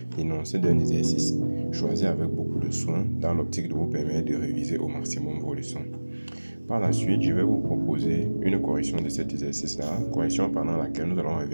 l'énoncé d'un exercice choisi avec beaucoup de soin dans l'optique de vous permettre de réviser au maximum vos leçons. Par la suite, je vais vous proposer une correction de cet exercice-là, correction pendant laquelle nous allons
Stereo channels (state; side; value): inverted; both; correlation -1.00